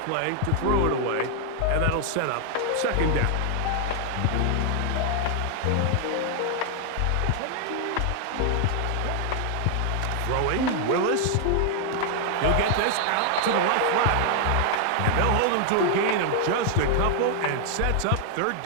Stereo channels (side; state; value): both; different; correlation 0.00